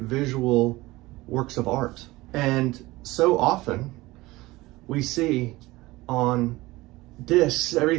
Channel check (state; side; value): quieter; left; 19.8 dB